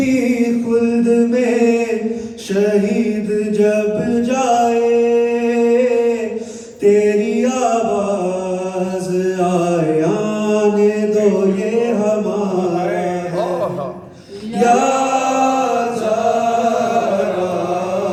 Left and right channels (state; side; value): identical; both; correlation 1.00